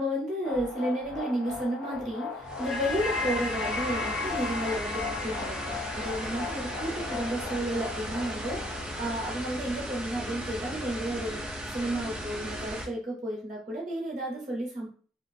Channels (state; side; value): normal; both; correlation 0.64